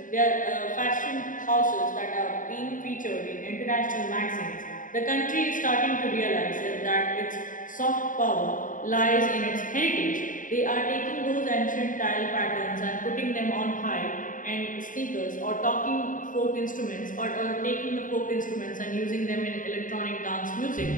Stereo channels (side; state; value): right; late; 0.38 ms